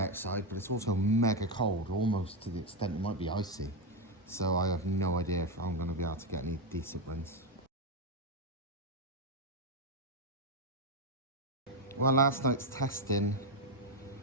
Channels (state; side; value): normal; both; correlation 0.06